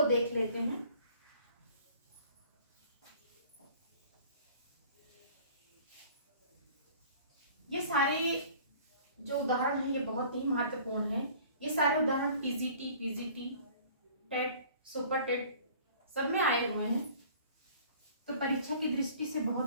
देख लेते हैं। ये सारे जो उदाहरण है ये बहुत ही महत्वपूर्ण है। ये सारे उदाहरण पीजीटी, टेट, सुपर टेट सब में आए हुए हैं, तो परीक्षा की दृष्टि से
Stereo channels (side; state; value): both; inverted; correlation -0.50